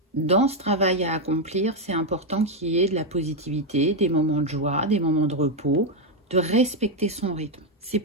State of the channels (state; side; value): normal; both; correlation 0.03